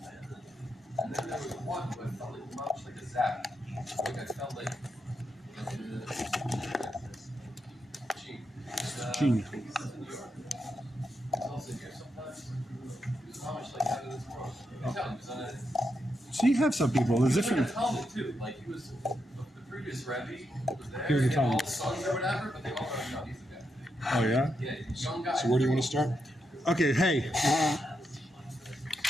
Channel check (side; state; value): both; normal; correlation 0.84